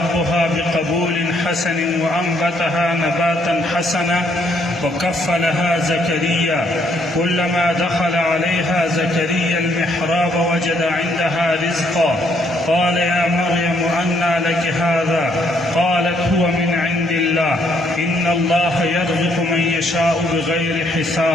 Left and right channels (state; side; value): normal; both; correlation 0.70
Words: بقبول حسن وأنبتها نباتا حسنا وكفلها زكريا. كلما دخل عليها زكريا المحراب وجد عندها رزقا قال يا مريم أنى لك هذا قالت هو من عند الله إن الله يرزق من يشاء بغير